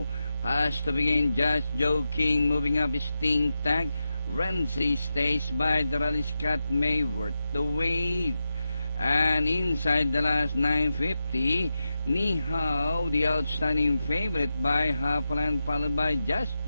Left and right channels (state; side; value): inverted; both; correlation -0.88